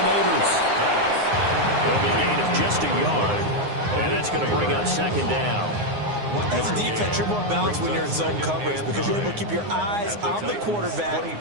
Neighbors. It'll be a gain of just a yard. And that's going to bring up 2nd down. As a defense, you're more balanced when you're in zone coverage because you're able to keep your eyes on the quarterback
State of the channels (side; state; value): left; late; 9.6 ms